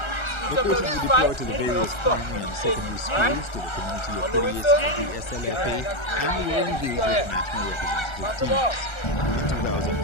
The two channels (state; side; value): late; right; 1.3 ms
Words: The coaches were deployed to the various primary and secondary schools, to the community affiliates of the SLFA, and were engaged with national representative teams. In